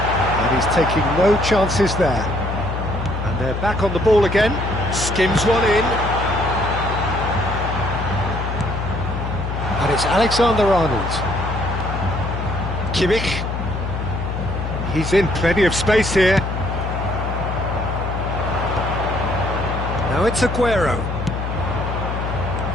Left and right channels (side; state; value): left; noise; hum, 4 dB below the sound